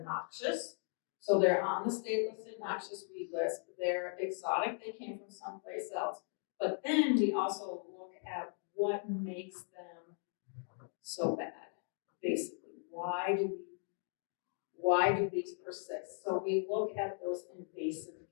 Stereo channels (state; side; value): silent; right; 53 dB below the other